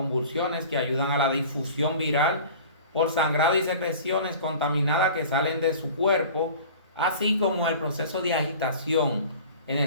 que ayudan a la difusión viral por sangrado y secreciones contaminadas que salen de su cuerpo, así como el proceso de agitación en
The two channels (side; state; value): both; inverted; correlation -0.42